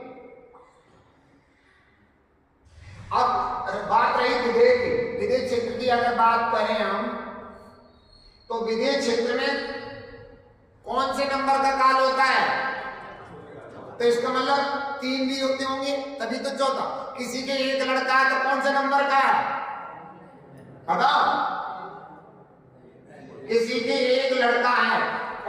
अब बात रही विदेह क्षेत्र की, अगर बात करें हम तो विदेह क्षेत्र में कौन से नंबर का काल होता है? तो इसका मतलब 3 भी होते होंगे तभी तो चौथा। किसी के एक लड़का है तो कौन से नंबर का है बताओ? किसी के एक लड़का है,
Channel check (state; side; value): identical; both; correlation 1.00